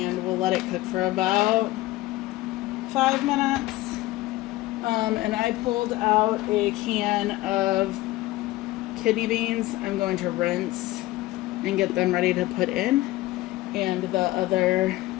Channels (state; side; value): quieter; right; 17.8 dB